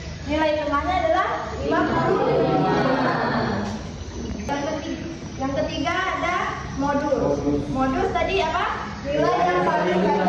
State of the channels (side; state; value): both; identical; correlation 1.00